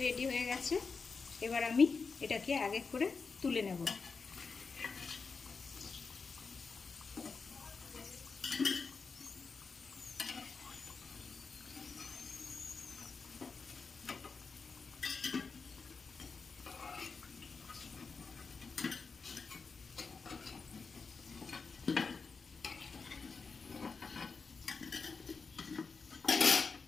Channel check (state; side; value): quieter; right; 4.8 dB